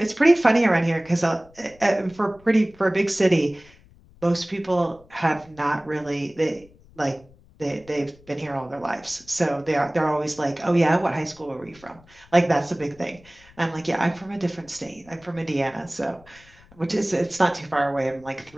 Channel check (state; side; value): noise; left; rumble, 26 dB below the sound